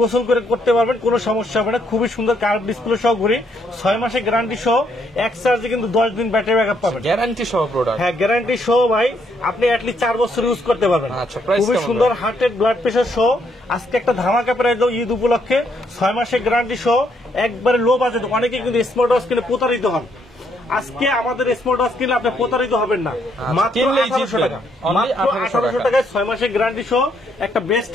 গোসল করে করতে পারবেন, কোনো সমস্যা হবে না। খুবই সুন্দর কার্ভ ডিসপ্লে সহ ঘড়ি, 6 মাসে গ্যারান্টি সহ, এক চার্জে কিন্তু 10 দিন ব্যাটারি ব্যাকআপ পাবেন। গ্যারান্টি সহ প্রোডাক্ট, হ্যাঁ গ্যারান্টি সহ ভাই, আপনি অ্যাটলিস্ট 4 বছর ইউজ করতে পারবেন। আচ্ছা, প্রাইস খুবই সুন্দর হার্টেড ব্লাড প্রেশার সহ আজকে একটা ধামাকা প্রাইস দাও ঈদ উপলক্ষে, 6 মাসে গ্যারান্টি সহ, একবারে লো বাজেট। অনেকে কিন্তু স্মার্ট ওয়াচ কিনে প্রতারিত হন, আজকে আমাদের স্মার্ট ওয়াচ কিনলে আপনি প্রতারিত হবেন না। মাত্র 1800 টাকা, মাত্র 1800 টাকায় 6 মাসের গ্যারান্টি সহ একটা বেস্ট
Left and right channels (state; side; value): normal; both; correlation 0.73